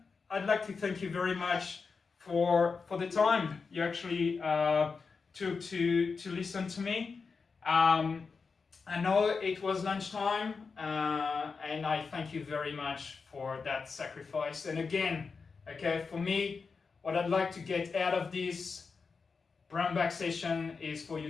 I'd like to thank you very much for the time you actually took to listen to me. I know it was lunchtime, and I thank you very much for that sacrifice. And again, okay, for me, what I'd like to get out of this brown bag session is for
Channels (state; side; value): quieter; right; 4.9 dB